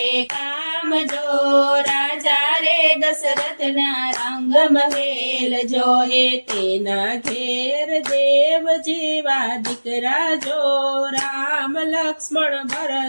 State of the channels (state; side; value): inverted; both; correlation -1.00